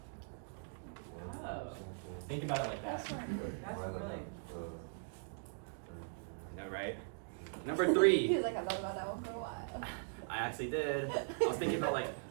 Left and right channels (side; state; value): left; silent; digital silence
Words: Oh. Think about it like that. That's really. No, right? Number He 3. was like, I thought about that one for a while. I actually did. I was thinking about like,